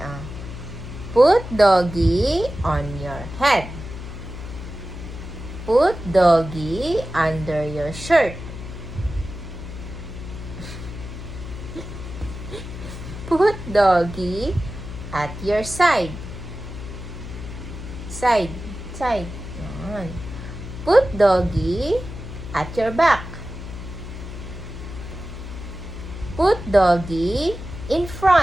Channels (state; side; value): noise; left; hum, 10 dB below the sound